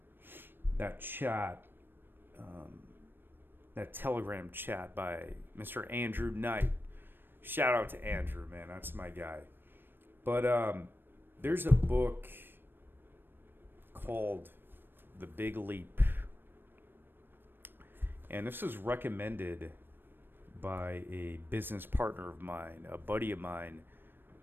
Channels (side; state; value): left; late; 0.097 ms